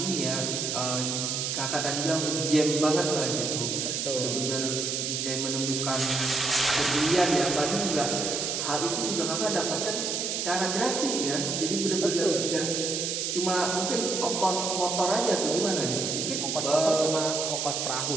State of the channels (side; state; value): right; noise; hiss, 1 dB below the sound